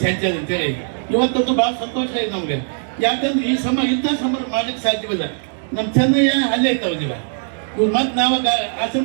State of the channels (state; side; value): silent; left; digital silence